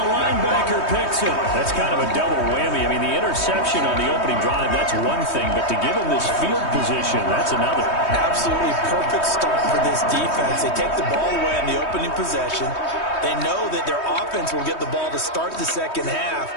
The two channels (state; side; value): late; right; 3.2 ms